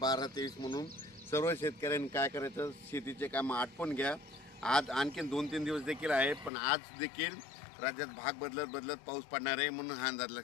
ते 20 म्हणून सर्व शेतकऱ्यांनी काय करायचं, शेतीचे काम आटपून घ्या. आज आणखीन 2-3 दिवस देखील आहे पण आज देखील राज्यात भाग बदलत पाऊस पडणार आहे म्हणून हा अंदाज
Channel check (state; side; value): drops out; right; at 6.5 s